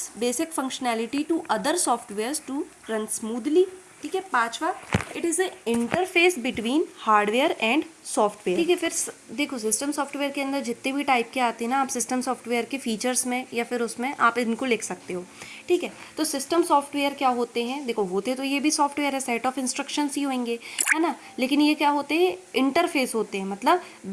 basic functionality to other softwares to run smoothly. ठीक है। पांचवा, it is a interface between hardware and software. ठीक है, फिर देखो सिस्टम सॉफ्टवेयर के अंदर जितने भी टाइप के आते हैं ना, आप सिस्टम सॉफ्टवेयर के फीचर्स में या फिर उसमें आप इनको लिख सकते हो। ठीक है, तो सिस्टम सॉफ्टवेयर क्या होते हैं, देखो होते तो ये भी सॉफ्टवेयर है, सेट ऑफ इंस्ट्रक्शंस ही होंगे, है ना, लेकिन ये क्या होते हैं, इंटरफेस होते हैं, मतलब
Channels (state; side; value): identical; both; correlation 1.00